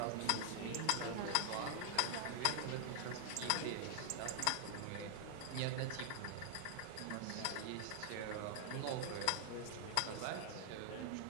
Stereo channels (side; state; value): both; different; correlation 0.00